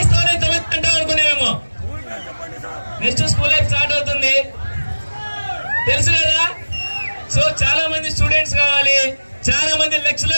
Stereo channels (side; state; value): both; inverted; correlation -1.00